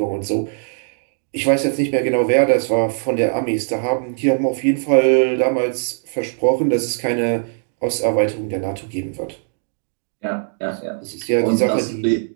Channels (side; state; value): left; silent; digital silence